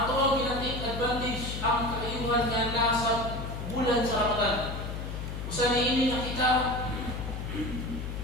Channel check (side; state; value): left; noise; hum, 6 dB below the sound